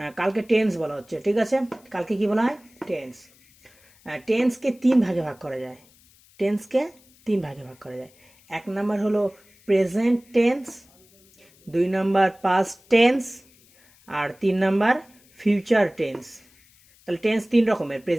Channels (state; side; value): noise; left; hiss, 29 dB below the sound